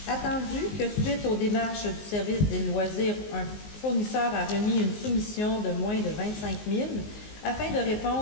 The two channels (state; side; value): late; right; 19 ms